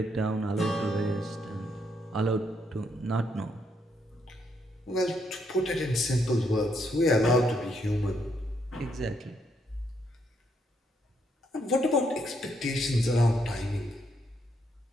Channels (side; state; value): both; normal; correlation 0.75